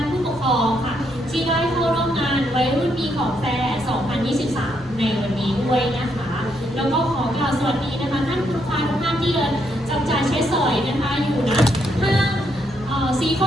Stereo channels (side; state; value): both; normal; correlation 0.76